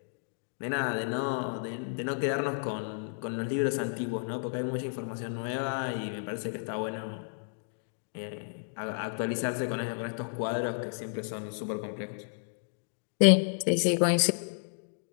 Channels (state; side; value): silent; right; digital silence